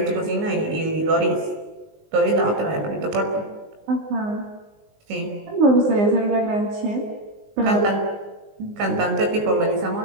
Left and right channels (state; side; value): late; left; 19 ms